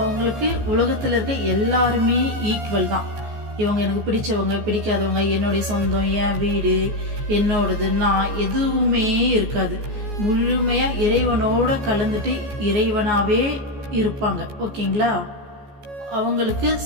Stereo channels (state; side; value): late; left; 14 ms